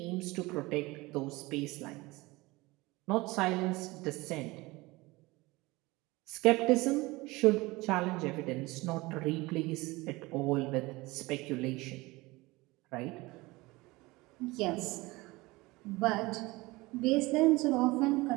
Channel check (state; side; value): quieter; left; 21.9 dB